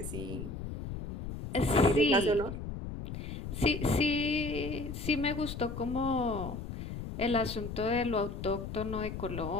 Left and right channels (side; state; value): left; noise; rumble, 7 dB below the sound